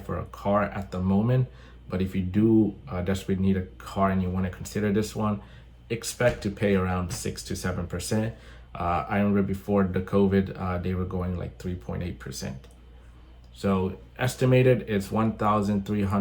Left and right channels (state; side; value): identical; both; correlation 1.00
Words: a car at the moment. But if you do desperately need a car and you want to consider this one, expect to pay around 6 to 7%. I remember before the COVID, they were going like 3.8%. So estimated it's